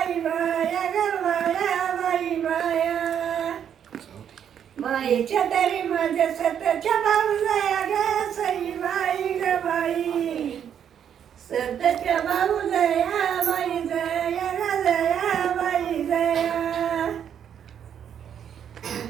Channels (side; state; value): left; quieter; 8.8 dB